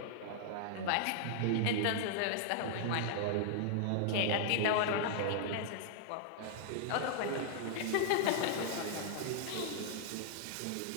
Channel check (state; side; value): different; both; correlation -0.01